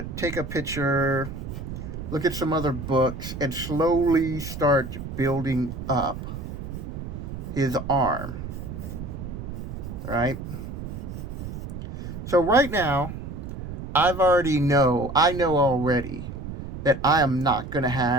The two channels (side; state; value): right; noise; rumble, 8 dB below the sound